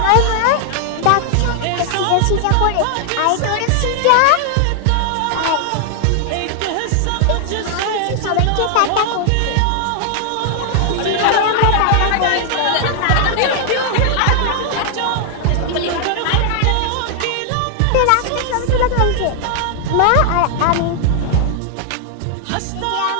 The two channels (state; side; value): different; both; correlation 0.00